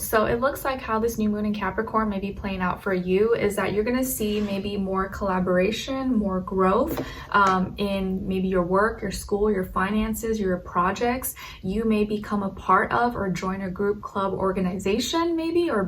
So it looks like how this new moon in Capricorn may be playing out for you is that you're going to see maybe more collaboration, more growth in maybe your work, your school, your finances, your projects. You may become a part of or join a group, club, organization maybe, or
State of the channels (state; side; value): identical; both; correlation 1.00